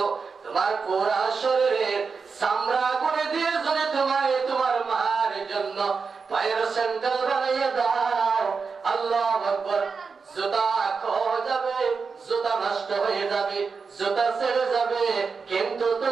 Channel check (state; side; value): quieter; left; 5.1 dB